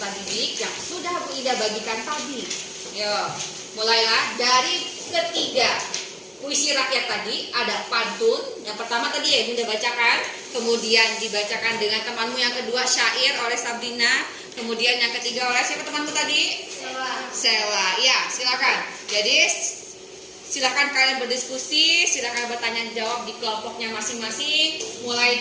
didik yang sudah Bu Ida bagikan tadi. Yuk, mulailah dari ketiga. Puisi rakyat tadi ada pantun. Yang pertama tadi ya Bunda bacakan, kemudian dibacakan dengan temanmu. Yang kedua syair oleh Sabrina, kemudian yang ketiga oleh siapa temanmu tadi? Sela. Ya, silakan. Jadi silakan kalian berdiskusi, silakan bertanya jawab di kelompoknya masing-masing. Mulai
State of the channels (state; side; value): identical; both; correlation 1.00